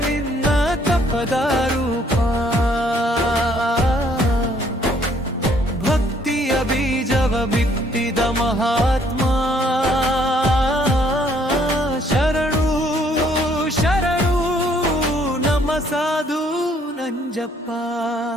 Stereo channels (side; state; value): both; normal; correlation 0.65